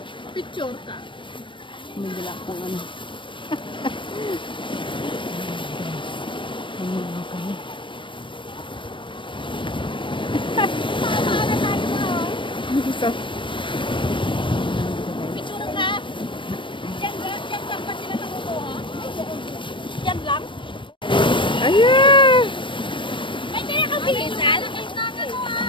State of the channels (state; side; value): late; right; 0.24 ms